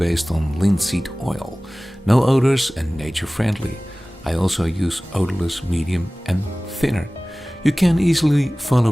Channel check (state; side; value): normal; both; correlation 0.98